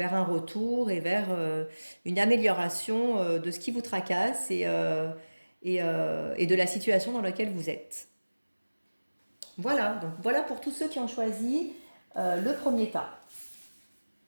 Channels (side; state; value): both; inverted; correlation -1.00